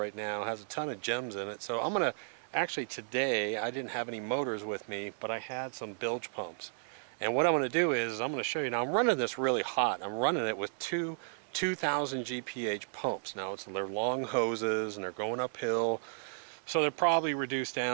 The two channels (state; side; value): silent; left; 55 dB below the other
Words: now has a ton of gems in it. So I'm gonna, actually today I didn't have any motors with me, but I had some bilge pumps. And what I'm gonna do is I'm gonna show you. Now I'm running this really hot. I'm running it with two 2000 GPH pumps. Now they're long hoses and they're going uphill. So they're probably reduced